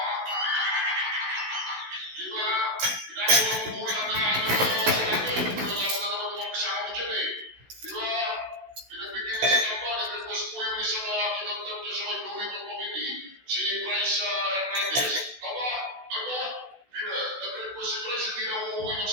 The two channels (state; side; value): late; left; 16 ms